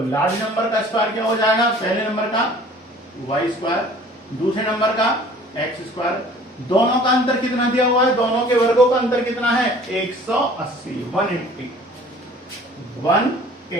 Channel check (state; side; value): normal; both; correlation 0.50